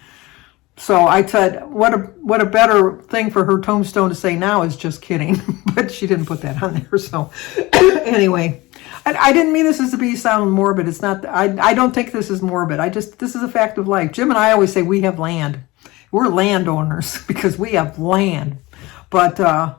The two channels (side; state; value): right; quieter; 21.1 dB